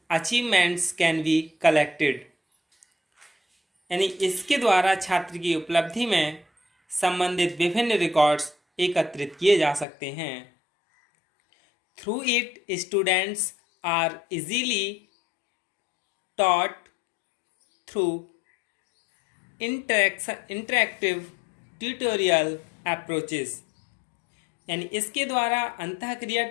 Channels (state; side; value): drops out; right; at 9.9 s